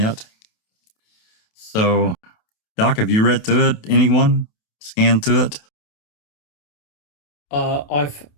So, Doc, have you read through it? Anyone scanned through it?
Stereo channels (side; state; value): right; late; 28 ms